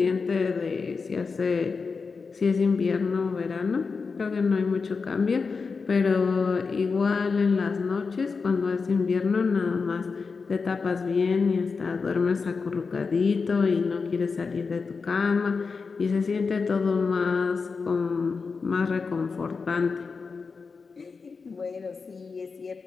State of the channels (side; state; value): right; quieter; 4.8 dB